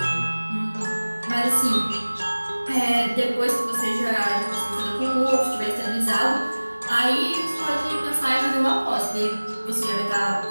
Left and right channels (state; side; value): inverted; both; correlation -1.00